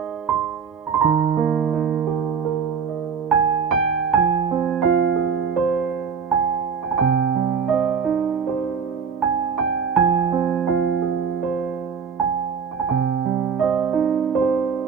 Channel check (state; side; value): quieter; left; 6.4 dB